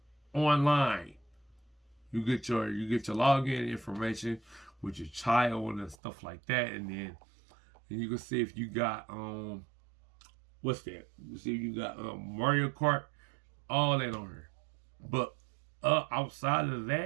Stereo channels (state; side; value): drops out; left; at 6.0 s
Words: online. You get your login information with your child and stuff like that, and then you can see if you got what's that? You see if you got Mario Kart, all that on here. But outside of